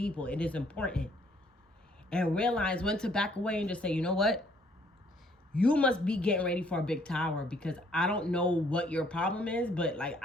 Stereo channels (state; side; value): normal; both; correlation 0.64